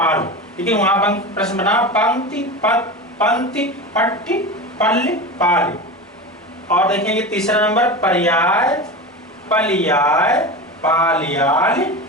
लेकिन वहां प्रश्न बना पंक्ति पंक्ति पट्टी पल्ले पाल। और देखेंगे तीसरा नंबर पर्याय पलियाय पालियाल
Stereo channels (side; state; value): both; normal; correlation 0.26